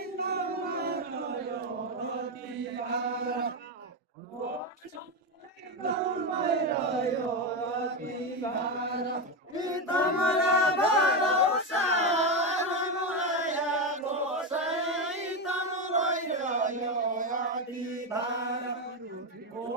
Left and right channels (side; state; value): both; normal; correlation 0.12